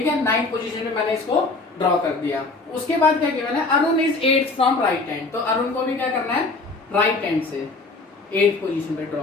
है, 9th पोजीशन पे मैंने इसको ड्रॉ कर दिया। उसके बाद क्या गिवन है, Arun is 8th from right hand, तो अरुण को भी क्या करना है, राइट हैंड से 8th पोजीशन पे ड्रॉ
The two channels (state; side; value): quieter; right; 3.4 dB